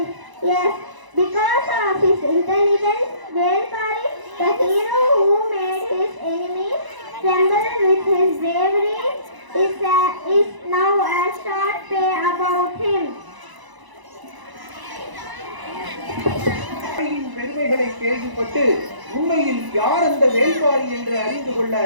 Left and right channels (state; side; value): late; left; 1.0 ms